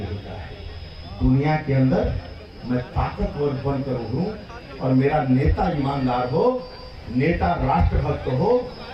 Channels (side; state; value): both; identical; correlation 1.00